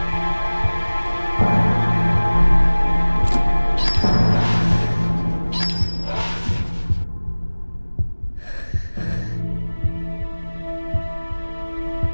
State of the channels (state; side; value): inverted; both; correlation -1.00